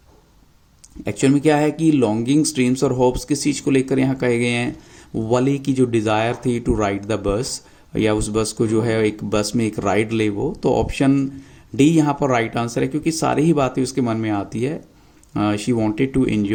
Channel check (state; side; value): identical; both; correlation 1.00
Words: एक्चुअल में क्या है कि लॉन्गिंग्स, ड्रीम्स और होप्स किस चीज़ को लेकर यहाँ कहे गए हैं? वली की जो डिज़ायर थी टू राइड द बस, या उस बस को जो है एक बस में एक राइड ले वो। तो ऑप्शन डी यहाँ पर राइट आंसर है, क्योंकि सारी ही बातें उसके मन में आती है। She wanted to